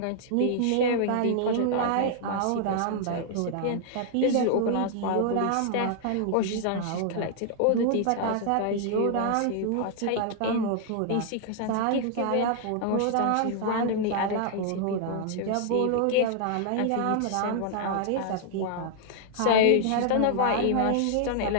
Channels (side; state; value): both; different; correlation -0.01